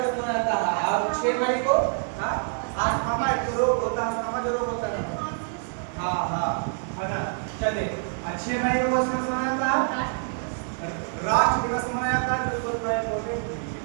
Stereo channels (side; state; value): left; silent; 61 dB below the other